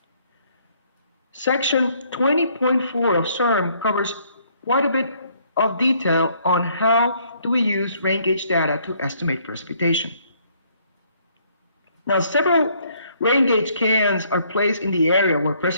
Section 20.4 of CERM covers quite a bit of detail on how do we use rain gauge data to estimate precipitation. Now, several rain gauge cans are placed in the area where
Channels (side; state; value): both; inverted; correlation -0.66